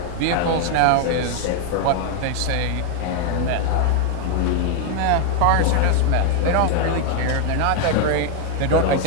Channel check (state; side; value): different; both; correlation 0.01